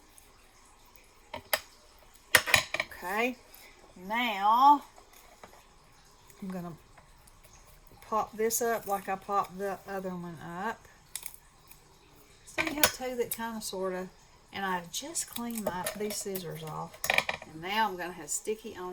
Okay, now I'm going to pop this up like I popped the other one up. So you have two that kind of sort of, And I just cleaned these scissors off. And now I'm going to have sticky on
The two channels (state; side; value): identical; both; correlation 1.00